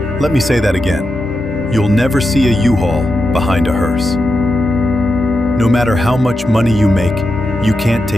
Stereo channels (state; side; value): normal; both; correlation 0.88